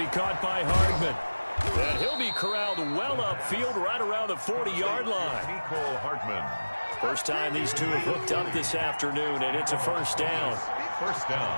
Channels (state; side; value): inverted; both; correlation -1.00